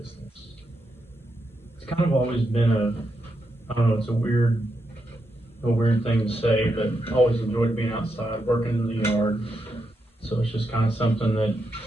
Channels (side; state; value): both; normal; correlation 0.83